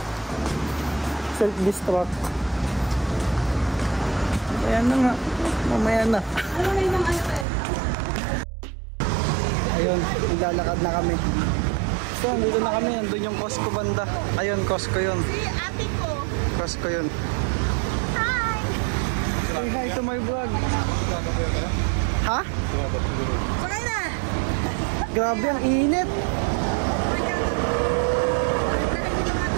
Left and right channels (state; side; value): drops out; left; at 7.5 s